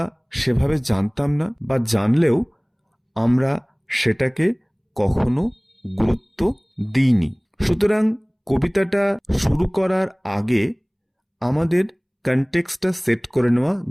সেভাবে জানতাম না, বা জানলেও আমরা সেটাকে কখনো গুরুত্ব দিইনি। সুতরাং কবিতাটা শুরু করার আগে আমাদের কনটেক্সটটা সেট করে নেওয়া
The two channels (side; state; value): both; identical; correlation 1.00